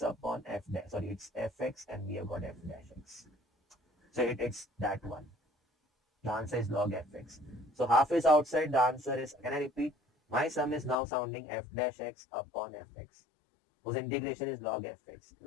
upon f dash. Sorry, it's fx and we have got f dash x. So it's that one. The answer is log fx. So half is outside. The answer is, can I repeat? My sum is now sounding f dash x upon fx. Whose integration is log fx.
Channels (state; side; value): drops out; right; at 11.0 s